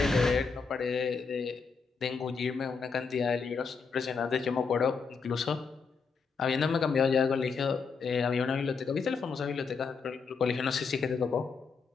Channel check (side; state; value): right; quieter; 5.2 dB